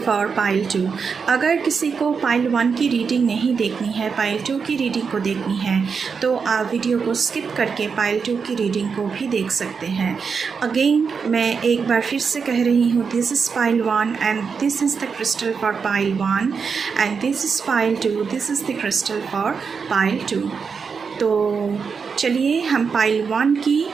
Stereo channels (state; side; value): quieter; left; 5.7 dB